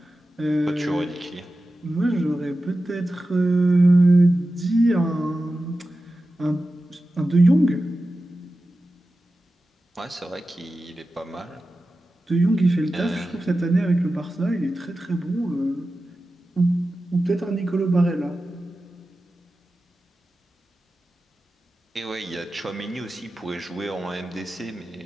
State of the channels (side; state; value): both; normal; correlation 0.93